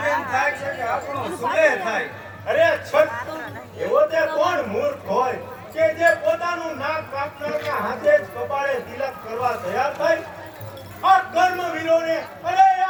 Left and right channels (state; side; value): identical; both; correlation 1.00